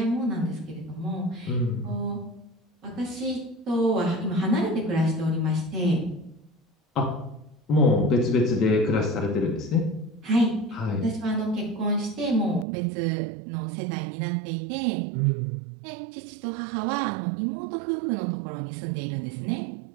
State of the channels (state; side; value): drops out; left; at 12.7 s